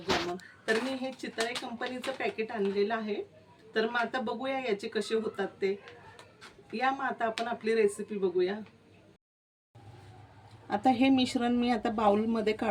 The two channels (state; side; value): identical; both; correlation 1.00